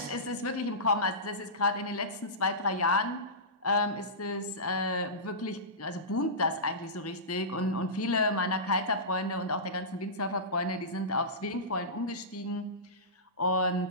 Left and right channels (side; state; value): both; normal; correlation -0.20